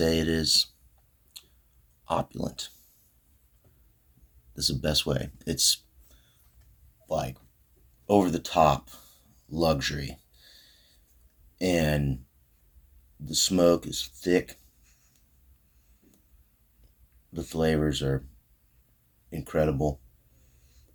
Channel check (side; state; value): both; identical; correlation 1.00